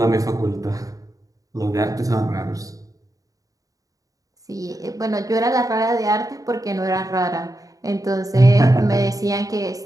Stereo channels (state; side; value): late; left; 0.17 ms